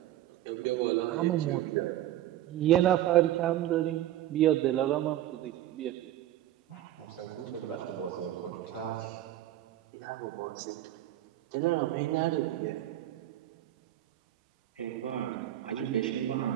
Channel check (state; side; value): quieter; left; 13.3 dB